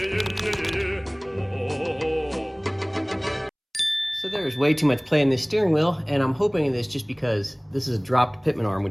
So there's way too much play in this steering wheel, and I'm hoping in this just because this is a dropped pitman arm,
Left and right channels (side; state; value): both; identical; correlation 1.00